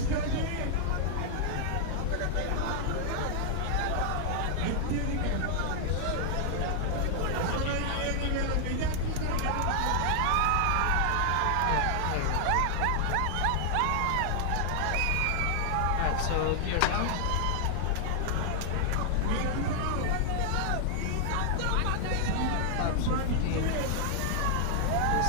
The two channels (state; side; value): different; both; correlation 0.00